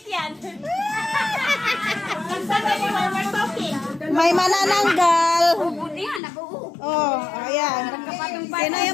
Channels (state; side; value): drops out; right; at 6.2 s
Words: yan. May manananggal. Buti yan, nabuo. Oh, ayan. Sino